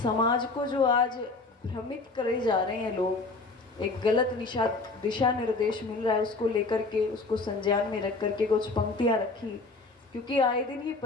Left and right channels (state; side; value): quieter; right; 3.6 dB